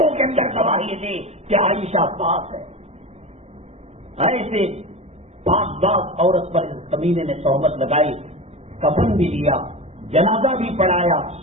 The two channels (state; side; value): late; left; 0.31 ms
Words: کے اندر گواہی دی کہ عائشہ پاک ہے. ایسے پاک باز عورت پر اس کمینے نے تہمت لگائی، کفن بھی دیا، جنازہ بھی پڑھایا،